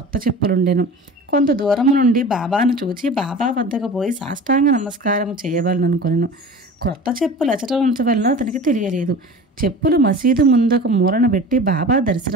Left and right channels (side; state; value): both; normal; correlation 0.37